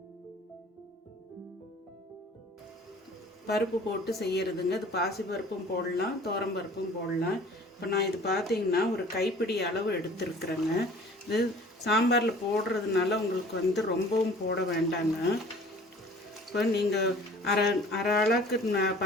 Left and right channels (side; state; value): both; normal; correlation 0.49